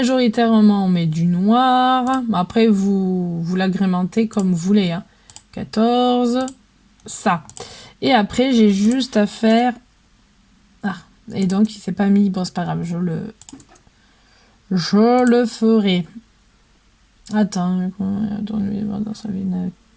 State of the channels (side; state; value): both; identical; correlation 1.00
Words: on met du noir. Après, vous l'agrémentez comme vous voulez. Hein. 14, ça. Et après, j'ai juste à faire... Ah, et donc, il s'est pas mis. Bon, c'est pas grave, je le ferai. Attends, dans sa